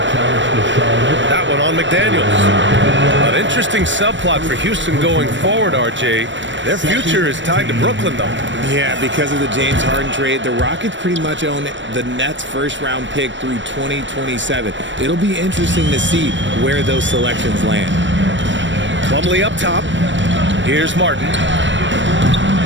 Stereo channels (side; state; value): left; late; 0.54 ms